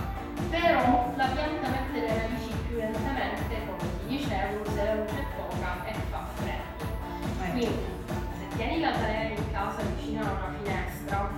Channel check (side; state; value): both; identical; correlation 1.00